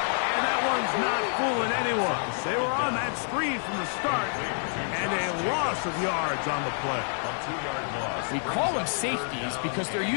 And that one's not fooling anyone. They were on that screen from the start, and a loss of yards on the play. We call them safeties because they're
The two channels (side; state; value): right; silent; 58 dB below the other